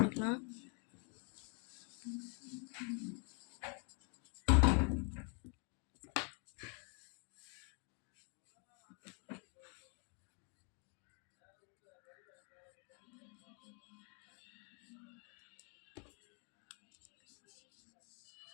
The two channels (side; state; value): right; quieter; 38.6 dB